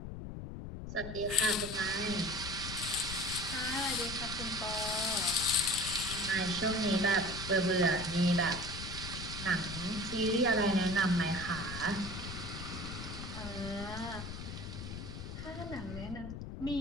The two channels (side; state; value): left; noise; rumble, 8 dB below the sound